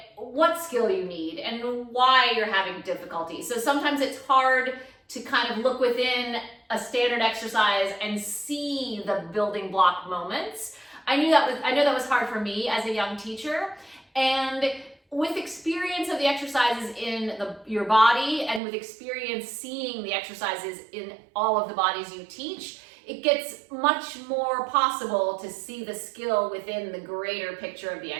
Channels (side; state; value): left; drops out; at 18.6 s